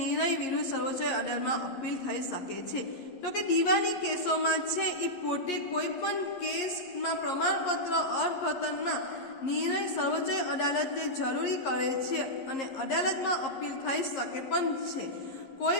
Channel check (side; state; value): right; late; 11 ms